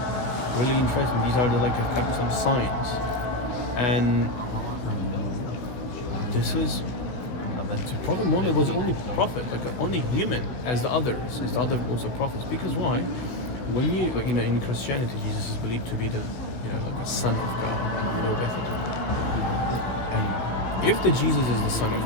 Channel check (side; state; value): right; late; 16 ms